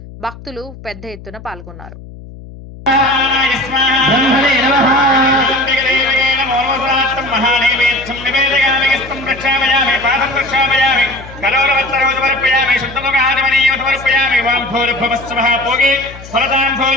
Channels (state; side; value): noise; left; hum, 16 dB below the sound